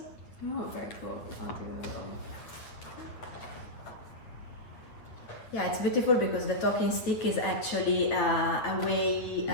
Oh, very cool. I'll do a little. Yeah, it's beautiful because the talking stick is actually a way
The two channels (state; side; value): late; right; 9.2 ms